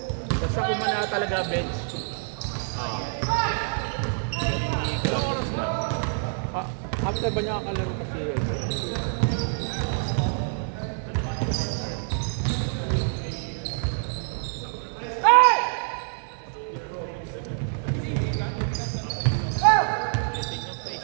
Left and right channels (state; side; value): silent; left; 58 dB below the other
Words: Basta kung na talaga bench. After ba niya kakalaro kasi yun?